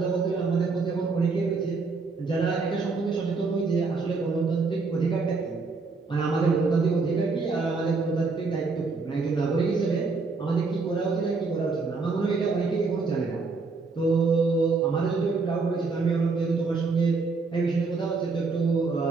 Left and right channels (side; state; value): left; quieter; 4.2 dB